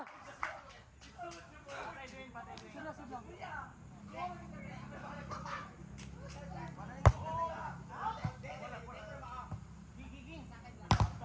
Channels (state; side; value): identical; both; correlation 1.00